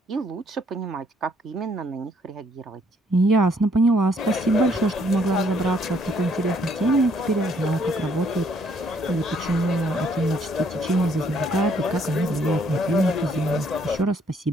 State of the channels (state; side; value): normal; both; correlation 0.67